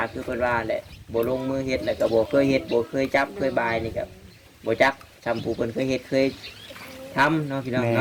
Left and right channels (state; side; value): identical; both; correlation 1.00